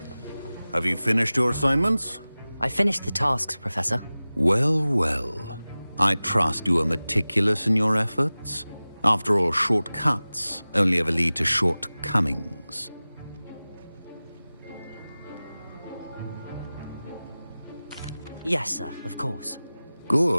Have you finished your assignments? I finished the tasks, Professor. Well, well. I trust you are meticulous in your efforts. After all, shortcuts only ever lead to shortcomings. Yes, sir, of course.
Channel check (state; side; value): inverted; both; correlation -0.98